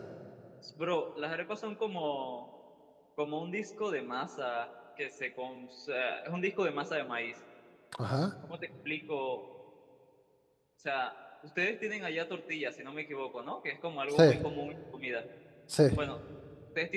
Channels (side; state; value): both; identical; correlation 1.00